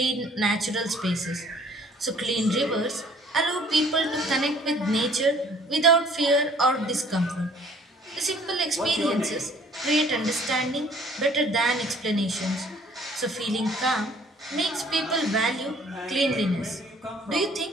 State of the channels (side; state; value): both; normal; correlation 0.56